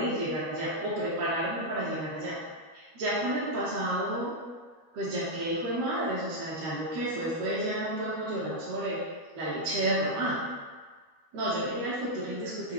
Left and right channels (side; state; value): left; late; 13 ms